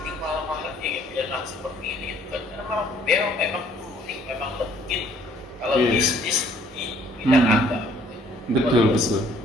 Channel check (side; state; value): both; normal; correlation 0.60